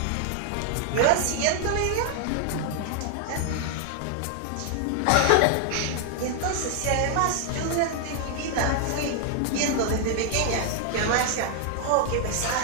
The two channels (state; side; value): different; both; correlation 0.00